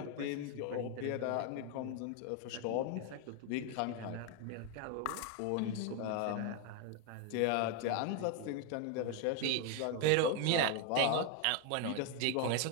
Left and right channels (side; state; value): both; different; correlation 0.01